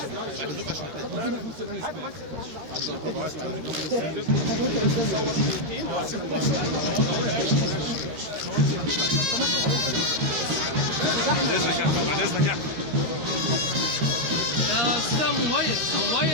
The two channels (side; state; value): left; late; 13 ms